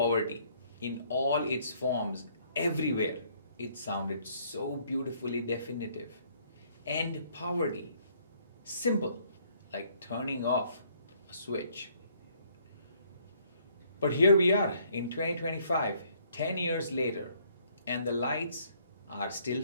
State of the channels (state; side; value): inverted; both; correlation -0.64